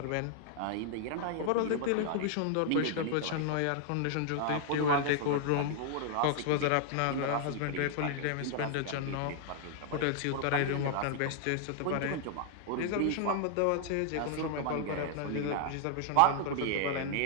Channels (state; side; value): different; both; correlation 0.00